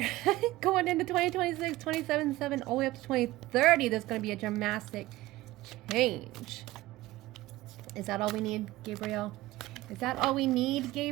going into 2026, 27/7, all the way up to 2030, there's going to be a dramatic change. Is that all we need, Gabriel? Is that all we need,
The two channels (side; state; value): left; quieter; 17.5 dB